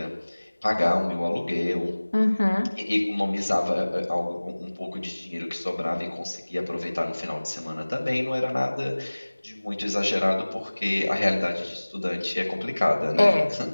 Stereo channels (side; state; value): both; inverted; correlation -1.00